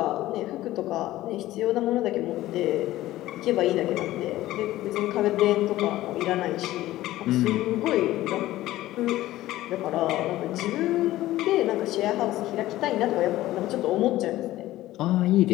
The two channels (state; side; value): quieter; right; 15.7 dB